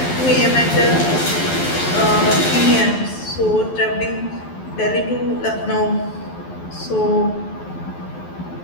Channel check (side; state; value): right; late; 12 ms